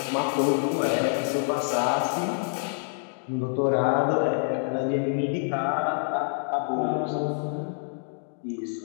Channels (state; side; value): silent; right; digital silence